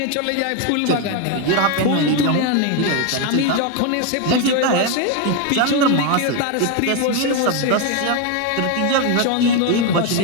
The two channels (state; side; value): different; both; correlation 0.02